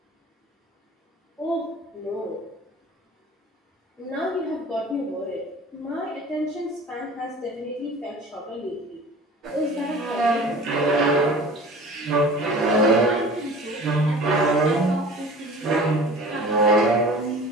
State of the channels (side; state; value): both; normal; correlation 0.42